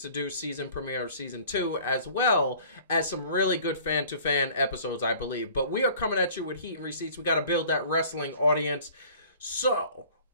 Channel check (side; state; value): both; inverted; correlation -0.50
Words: Do season premiere of season 2, as well as some really good fan-to-fan episodes, I believe. But we are coming at you with Heat and Receipts. We got to build that wrestling audience. So,